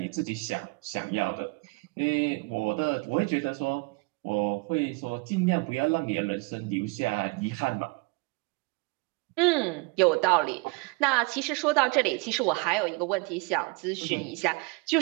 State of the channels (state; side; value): quieter; left; 27.9 dB